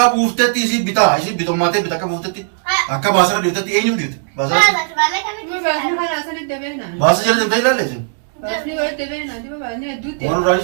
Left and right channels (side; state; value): left; silent; digital silence